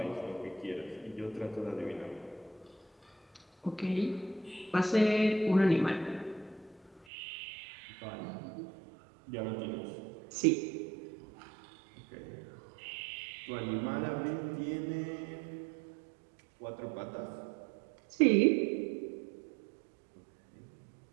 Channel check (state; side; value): drops out; left; at 7.1 s